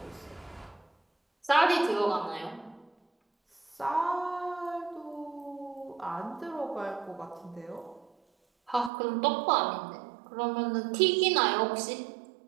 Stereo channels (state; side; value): drops out; left; at 8.9 s